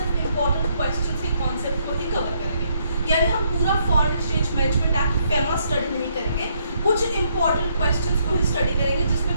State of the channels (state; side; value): inverted; both; correlation -0.72